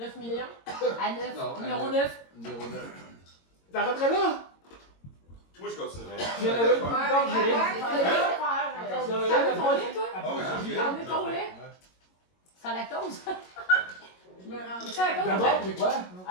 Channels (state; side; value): late; right; 22 ms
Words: millions? À 9. Non, Numéro 9. Numéro 9. T'arrêterais là? Moi, je continuerai. J'ai la même temps que j'ai rien. T'en veux ton lait, toi? Ah oui, j'ai T'en veux ton lait? Sans lactose? Je me rendrais. Sans lactose? D'abord, c'est quoi?